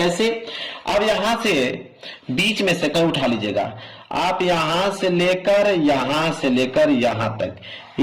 अब यहां से बीच में से कहीं उठा लीजिएगा, आप यहां से लेकर यहां तक,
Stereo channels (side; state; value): both; identical; correlation 1.00